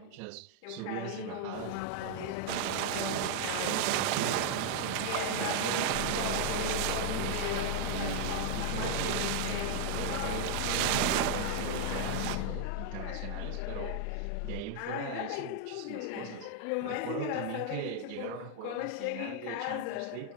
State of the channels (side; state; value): both; different; correlation 0.00